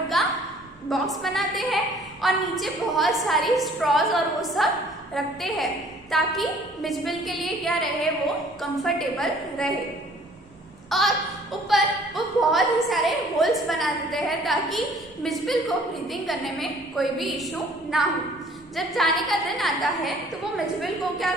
का बॉक्स बनाते हैं और नीचे बहुत सारी स्ट्रॉज और वो सब रखते हैं ताकि मिचबिल के लिए क्या रहे, वो कंफर्टेबल रहे। और ऊपर वो बहुत ही सारे होल्स बना देते हैं ताकि मिचबिल को ब्रीथिंग करने में कोई भी इशू ना हो। जब जाने का दिन आता है तो वो मिचबिल को क्या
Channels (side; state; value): both; normal; correlation 0.56